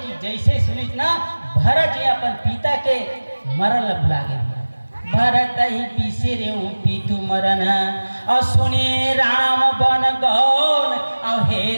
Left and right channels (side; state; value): both; inverted; correlation -1.00